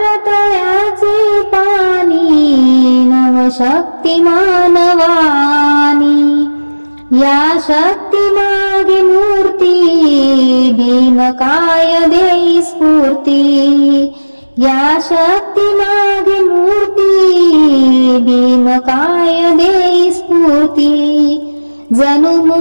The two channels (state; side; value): inverted; both; correlation -1.00